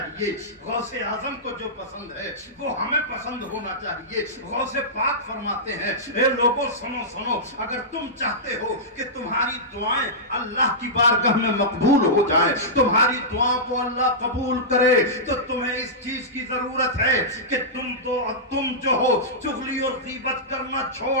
गौसे आजम को जो पसंद है वो हमें पसंद होना चाहिए। गौसे पाक फरमाते हैं, ए लोगों सुनो सुनो, अगर तुम चाहते हो कि तुम्हारी दुआएं अल्लाह की बारगाह में मकबूल हो जाएं, तुम्हारी दुआ को अल्लाह कबूल करे, तो तुम्हें इस चीज की जरूरत है कि तुम जो हो चुगली और गीबत करना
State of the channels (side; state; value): both; normal; correlation -0.14